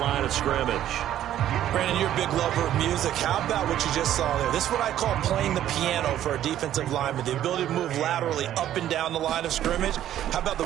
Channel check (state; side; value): quieter; left; 11.9 dB